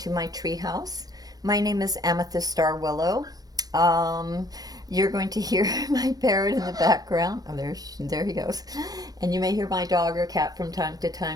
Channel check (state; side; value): late; left; 0.19 ms